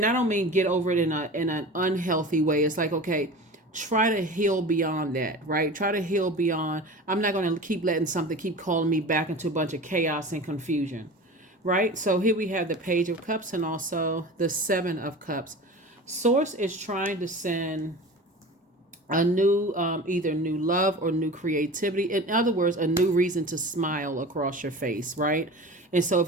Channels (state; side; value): normal; both; correlation 0.35